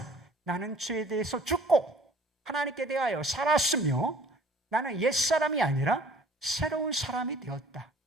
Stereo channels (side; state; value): both; normal; correlation 0.53